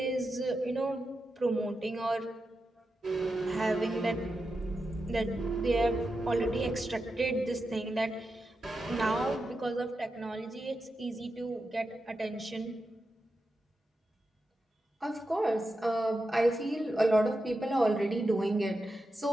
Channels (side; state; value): both; normal; correlation 0.89